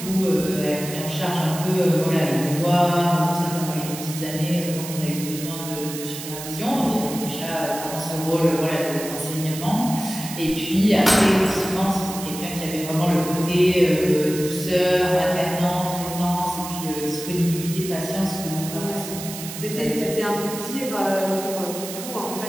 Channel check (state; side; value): noise; right; hiss, 10 dB below the sound